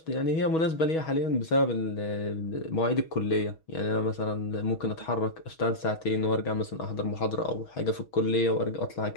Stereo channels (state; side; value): late; right; 6.3 ms